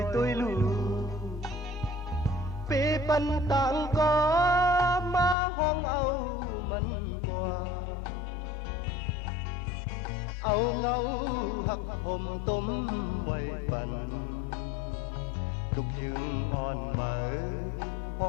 tôi lù bê bắn tặng có má hong âu mân qua âu ngâu hắc hôm tôm quay bắn tục dương on mở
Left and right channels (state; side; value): drops out; right; at 5.4 s